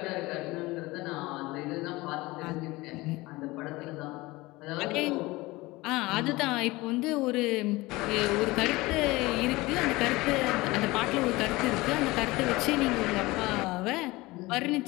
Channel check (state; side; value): quieter; right; 21.0 dB